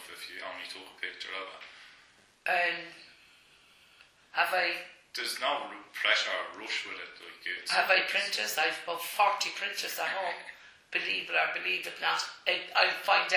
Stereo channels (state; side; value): identical; both; correlation 1.00